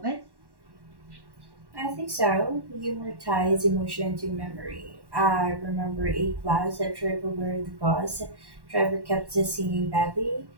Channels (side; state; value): left; late; 1.1 ms